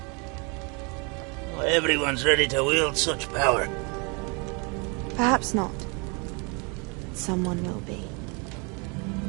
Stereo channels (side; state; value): left; quieter; 32.4 dB